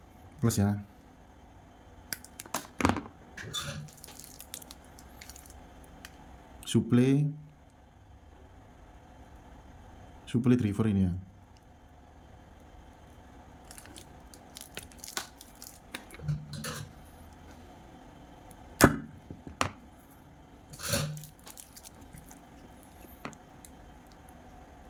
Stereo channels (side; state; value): both; identical; correlation 1.00